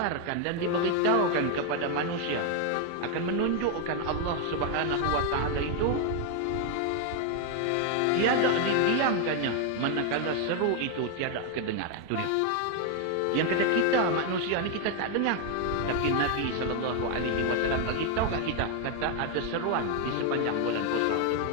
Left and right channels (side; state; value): both; different; correlation 0.01